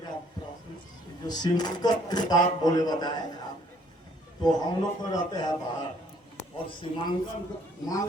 प्रश्न जो सीमांकन की बात बोले बताए आप, तो हम लोग तो रहते हैं बाहर, और सीमांकन मान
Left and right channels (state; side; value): normal; both; correlation 0.62